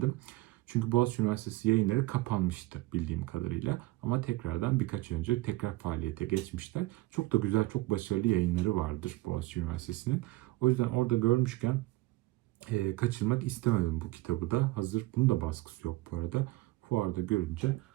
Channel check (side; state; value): left; quieter; 19.3 dB